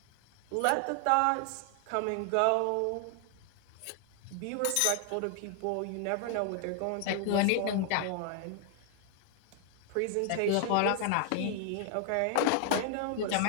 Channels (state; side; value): different; both; correlation 0.00